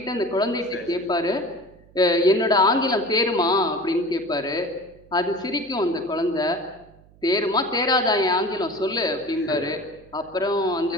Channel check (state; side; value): noise; right; hum, 27 dB below the sound